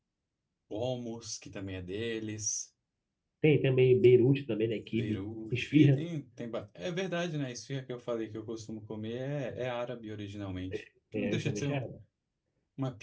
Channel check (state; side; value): identical; both; correlation 1.00